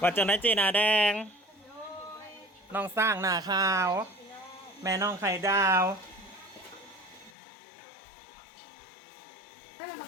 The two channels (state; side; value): drops out; right; at 7.3 s